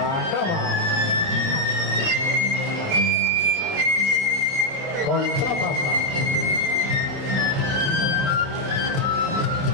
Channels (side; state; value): left; late; 30 ms